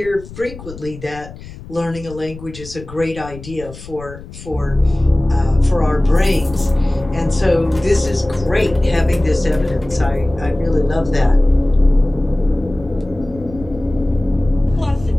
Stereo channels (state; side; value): noise; left; rumble, 15 dB below the sound